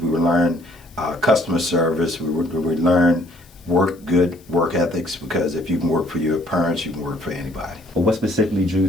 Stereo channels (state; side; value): noise; left; hiss, 28 dB below the sound